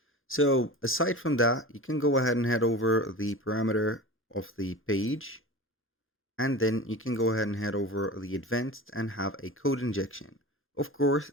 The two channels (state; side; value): normal; both; correlation 0.33